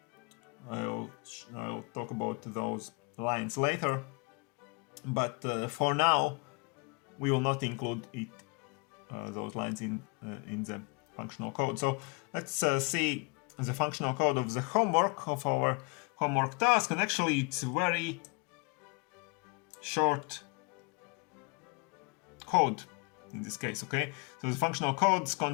I'll talk about those lines later, but for now we will not include those lines in the functional code. So let's see the functional code of the homework, of our homework task, and actually it's very short code in this case. Okay, so the functional code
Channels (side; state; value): right; quieter; 33.5 dB